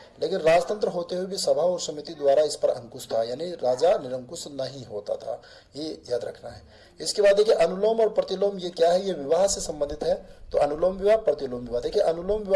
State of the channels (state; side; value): identical; both; correlation 1.00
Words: लेकिन राजतंत्र होते हुए भी सभा और समिति द्वारा इस पर अंकुश था, यानी राजा निरंकुश नहीं होता था, ये याद रखना है। इसके बाद देखिए, अनुलोम और प्रतिलोम ये क्या है, ये विवाह से संबंधित है। तो अनुलोम विवाह, प्रतिलोम विवाह। देखिए, अनुलोम